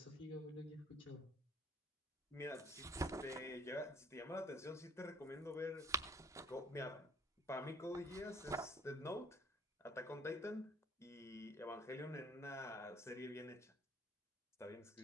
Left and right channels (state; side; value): normal; both; correlation 0.54